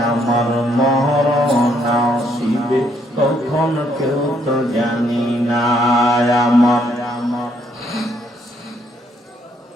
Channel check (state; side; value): normal; both; correlation 0.70